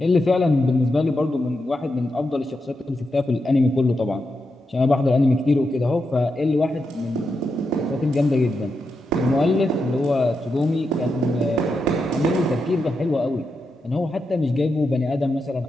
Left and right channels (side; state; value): both; normal; correlation 0.86